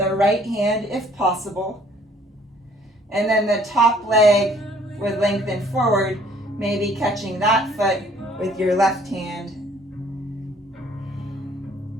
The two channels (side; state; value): both; normal; correlation 0.59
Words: right hand if possible. And then the top leg would lengthen forward, maybe catching that foot with your left hand.